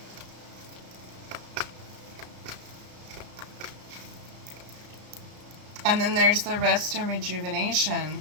And then there's the rest and rejuvenation.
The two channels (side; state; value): left; late; 34 ms